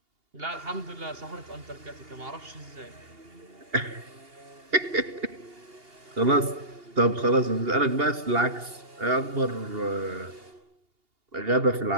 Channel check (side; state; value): left; late; 2.8 ms